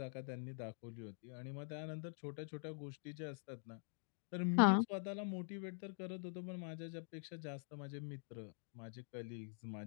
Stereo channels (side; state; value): right; silent; digital silence